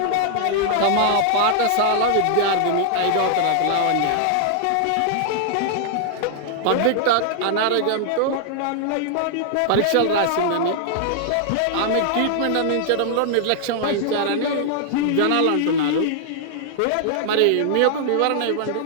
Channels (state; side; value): different; both; correlation -0.01